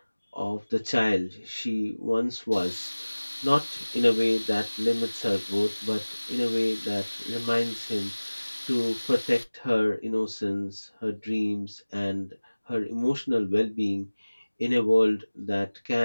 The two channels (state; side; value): inverted; both; correlation -1.00